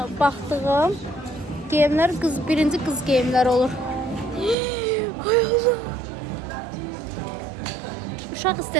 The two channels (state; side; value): drops out; left; at 4.5 s